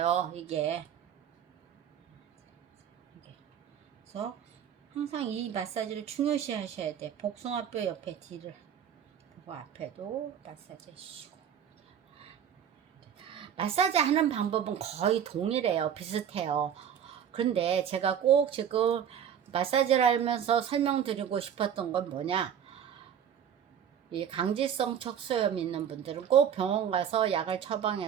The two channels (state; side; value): quieter; left; 8.7 dB